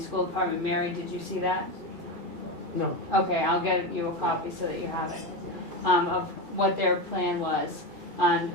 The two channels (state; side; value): late; left; 2.4 ms